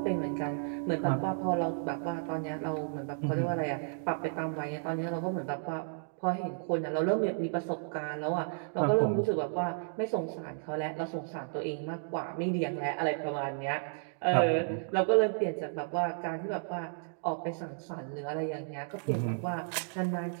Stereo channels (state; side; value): silent; left; digital silence